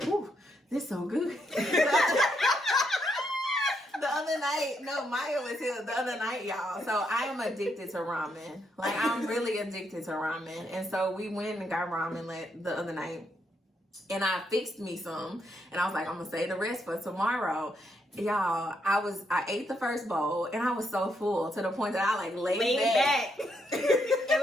"Ooh, this so good." The other night, no, Maya was here the other night, y'all. So I am addicted to ramen. Like I'm really addicted to ramen, and so we went and got ramen the other night, and I fixed me some, and I was like, I'm gonna save the rest for tomorrow. Y'all, I ate the first bowl, and I was so full to the point that I like laid back. It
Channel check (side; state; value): both; normal; correlation 0.77